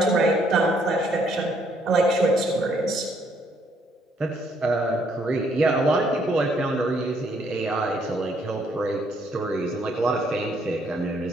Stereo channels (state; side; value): normal; both; correlation 0.69